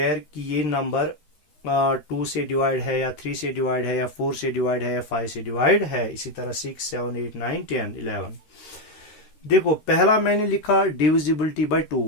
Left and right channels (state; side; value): late; right; 13 ms